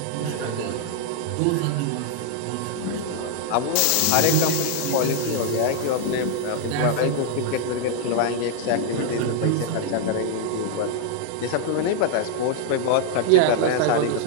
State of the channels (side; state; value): both; different; correlation 0.00